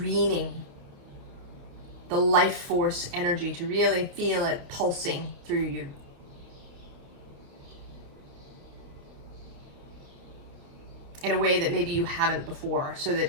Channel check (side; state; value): left; late; 29 ms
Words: the life force energy, to really feel it pulsing through you. In a way that maybe you haven't before, so that